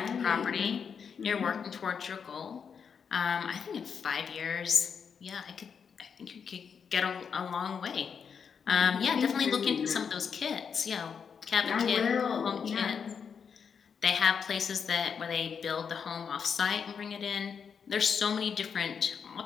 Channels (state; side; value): quieter; right; 6.6 dB